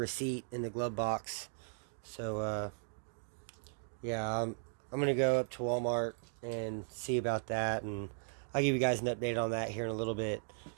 in the glove box. So yeah, I'm going to go up to Walmart and see about that, and I'll give you guys an update on that here in a little bit.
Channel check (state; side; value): silent; left; digital silence